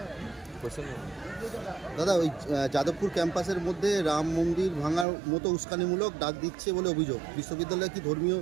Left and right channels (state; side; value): drops out; left; at 5.1 s